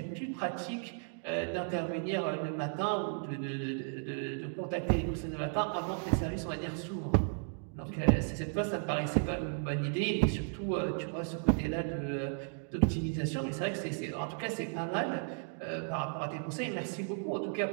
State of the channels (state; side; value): silent; left; 55 dB below the other